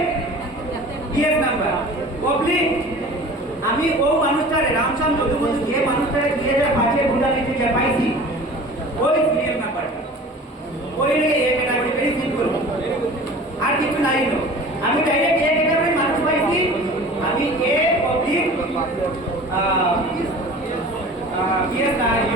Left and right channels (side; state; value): both; normal; correlation 0.42